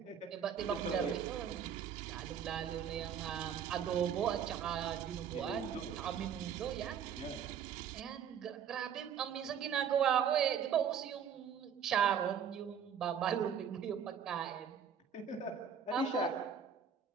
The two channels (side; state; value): left; quieter; 7.9 dB